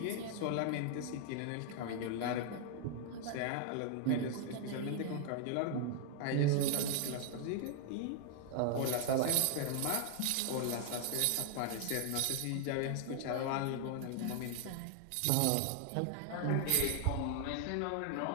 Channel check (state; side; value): different; both; correlation 0.00